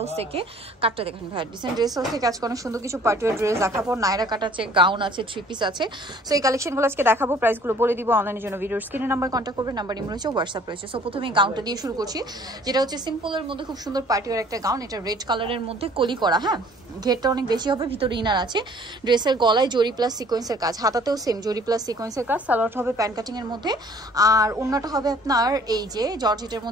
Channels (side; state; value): both; normal; correlation 0.55